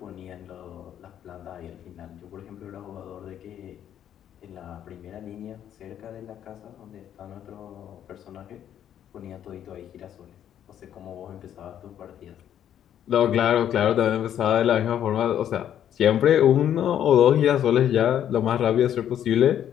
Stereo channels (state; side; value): quieter; right; 10.2 dB